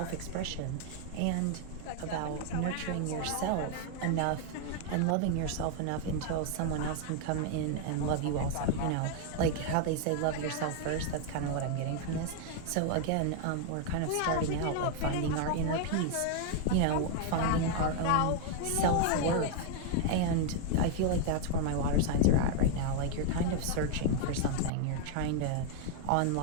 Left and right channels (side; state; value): both; different; correlation 0.00